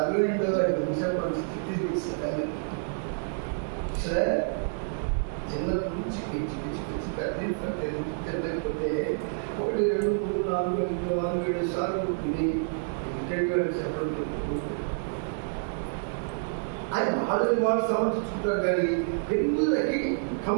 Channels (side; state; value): left; silent; digital silence